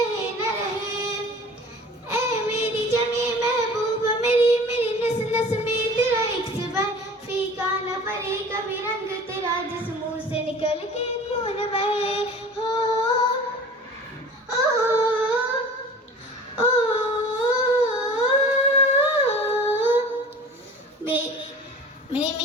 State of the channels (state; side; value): normal; both; correlation 0.42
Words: न रहे। ऐ मेरी जमी महबूब मेरी, मेरी नस नस में तेरा एक सिबर फीका न पड़े कभी रंग तेरा, जिस मुंह से निकल के खून बहे। हो ओ, ओ, मेरी